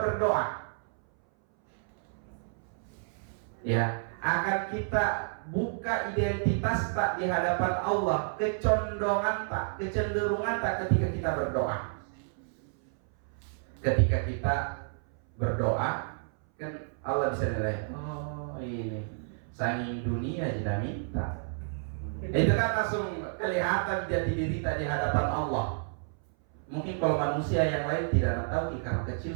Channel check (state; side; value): silent; left; 58 dB below the other